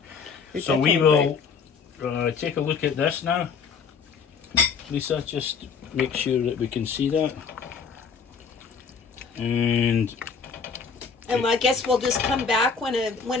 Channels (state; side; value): quieter; right; 5.7 dB